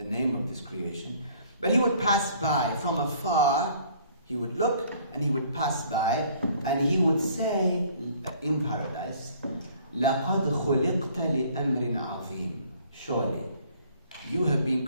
name of this creation, but he would pass by from afar, he would look and he would pass by, and he would say in paradise, لَقَدْ خُلِقْتَ لِأَمْرٍ عَظِيمٍ. Surely, you have been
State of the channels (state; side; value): inverted; both; correlation -0.57